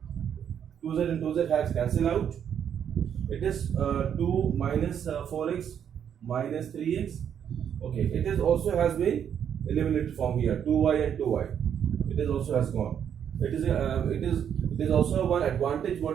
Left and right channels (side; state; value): left; quieter; 8.7 dB